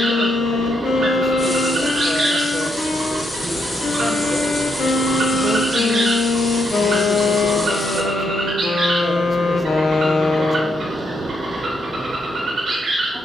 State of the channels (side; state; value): both; normal; correlation 0.77